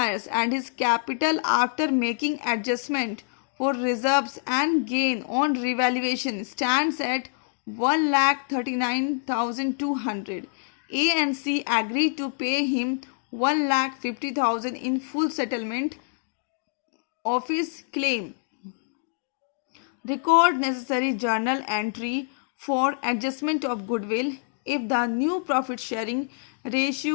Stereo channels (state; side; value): silent; right; digital silence